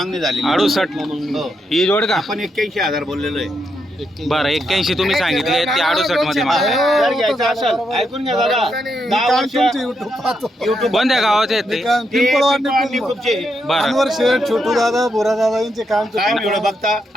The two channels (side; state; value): both; normal; correlation 0.81